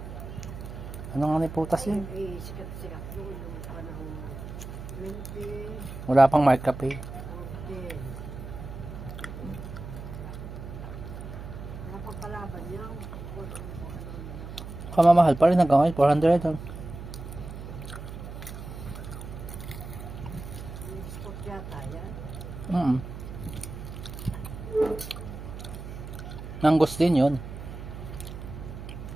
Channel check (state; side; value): noise; right; hum, 10 dB below the sound